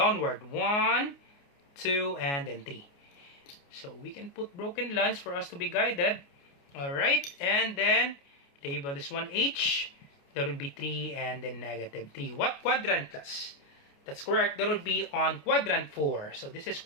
1, 2, and then 3. So we can put broken lines for us to be guided. Alright. And then label this one H. That would be 3 and then negative 3. What quadrant, class? That's correct. That would be on quadrant 4. So this is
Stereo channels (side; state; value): right; late; 29 ms